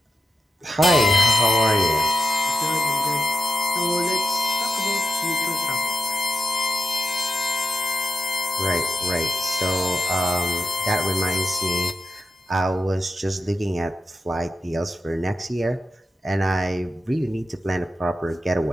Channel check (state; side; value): normal; both; correlation 0.89